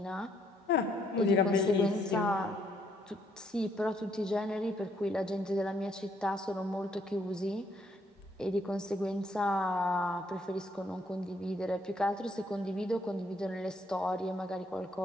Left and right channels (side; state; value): both; normal; correlation 0.70